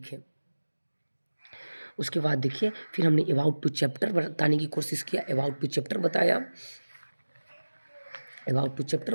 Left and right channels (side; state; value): both; inverted; correlation -1.00